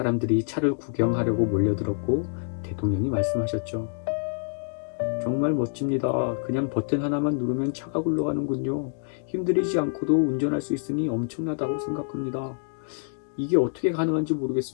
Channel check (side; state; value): right; silent; digital silence